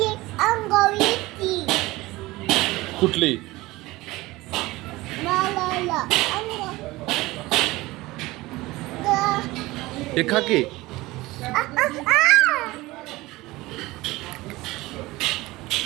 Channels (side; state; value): left; quieter; 19.8 dB